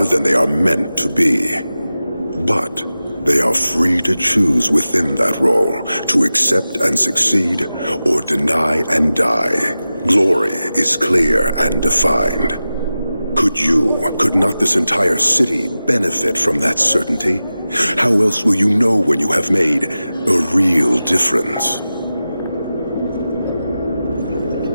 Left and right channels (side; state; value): both; inverted; correlation -0.94